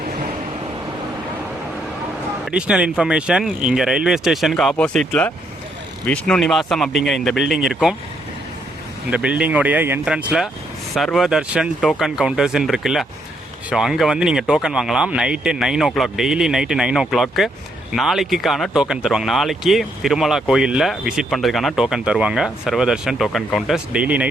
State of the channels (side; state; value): both; normal; correlation 0.74